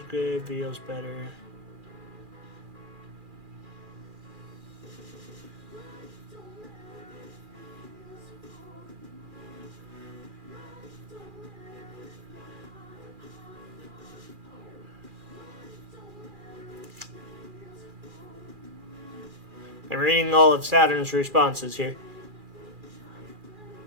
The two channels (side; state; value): left; late; 2.4 ms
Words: good, video's better. I'm reading all of Saturn's responses here.